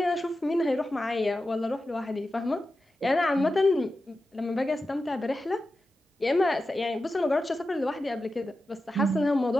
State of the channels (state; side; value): normal; both; correlation 0.92